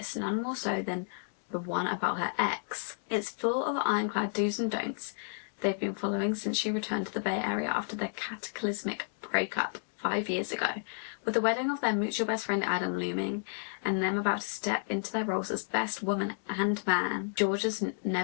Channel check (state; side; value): silent; right; digital silence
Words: none more so than the one about her ex. It's full of ironclad do's and don'ts they've been following since she returned to the Bay Area after their cataclysmic breakup 5 years ago. With the wedding of their mutual best friend Adam looming, and them about to step into their roles as best woman and man, Georgia's